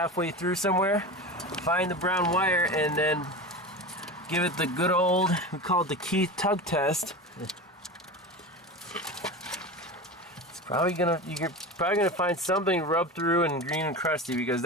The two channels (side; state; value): both; normal; correlation 0.27